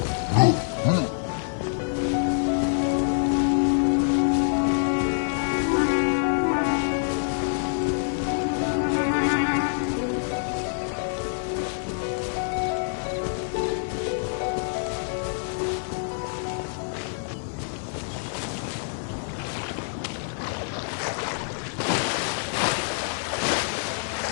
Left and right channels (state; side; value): silent; right; digital silence